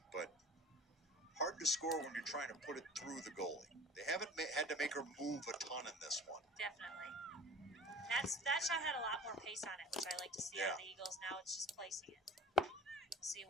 but hard to score when you're trying to put it through the goalie. They haven't had to make her move a ton in this one. Definitely. That shot had a lot more pace on it, which I like to see out of the Eagles. Now it's just placing it. We'll see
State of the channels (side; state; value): both; normal; correlation 0.43